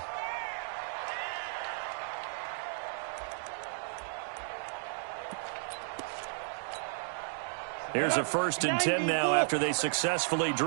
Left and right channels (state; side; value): silent; left; digital silence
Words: Here's a 1st and 10 now after they successfully